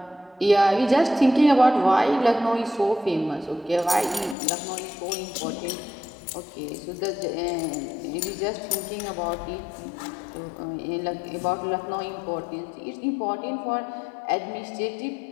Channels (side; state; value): right; drops out; at 4.4 s